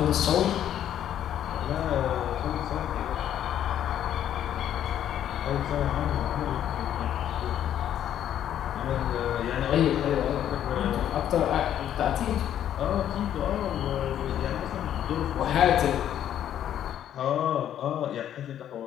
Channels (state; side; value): quieter; right; 10.7 dB